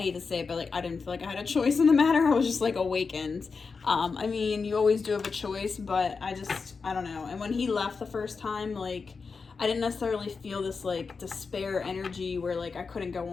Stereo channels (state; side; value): quieter; right; 4.9 dB